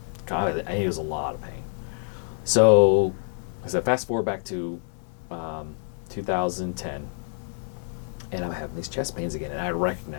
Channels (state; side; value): silent; right; 60 dB below the other